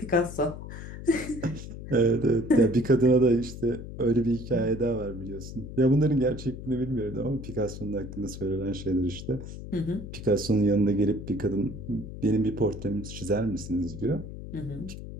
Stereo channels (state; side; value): noise; left; hum, 10 dB below the sound